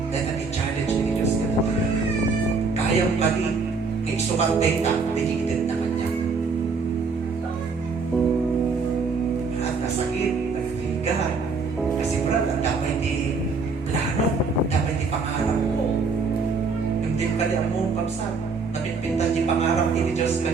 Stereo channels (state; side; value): quieter; left; 4.5 dB